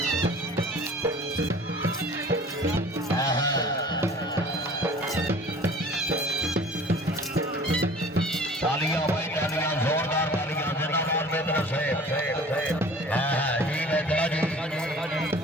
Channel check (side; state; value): both; normal; correlation 0.46